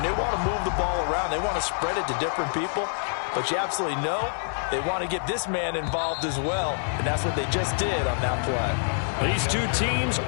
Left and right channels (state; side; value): silent; right; digital silence